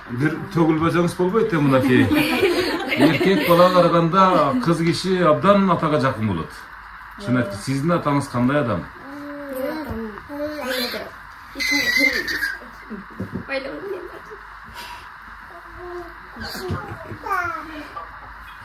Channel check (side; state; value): both; identical; correlation 1.00